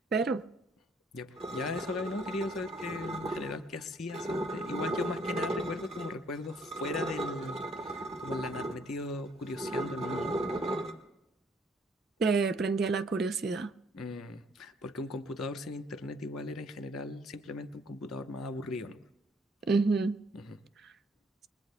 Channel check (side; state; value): both; normal; correlation 0.64